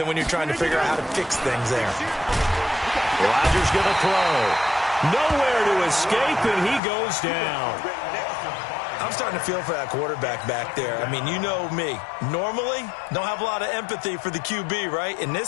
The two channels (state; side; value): drops out; right; at 6.8 s